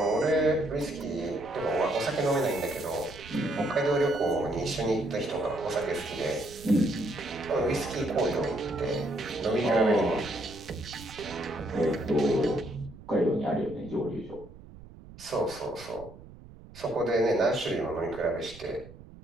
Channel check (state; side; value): noise; right; rumble, 18 dB below the sound